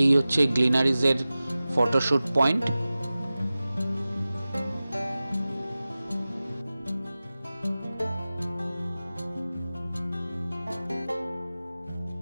এই হচ্ছে গ্লিনারিজের ফটোশুট পয়েন্ট।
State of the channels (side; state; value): both; inverted; correlation -0.96